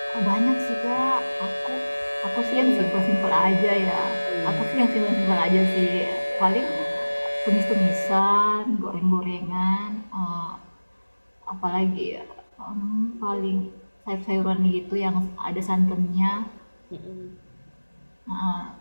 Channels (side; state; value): both; inverted; correlation -1.00